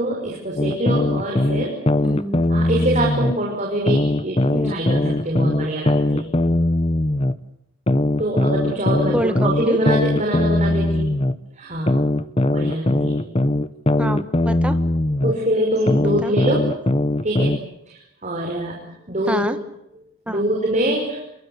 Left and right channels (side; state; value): both; normal; correlation 0.68